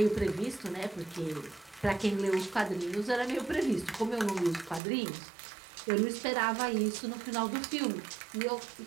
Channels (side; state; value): left; drops out; at 4.8 s